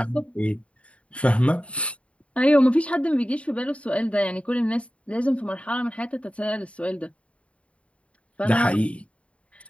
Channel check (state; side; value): late; right; 0.062 ms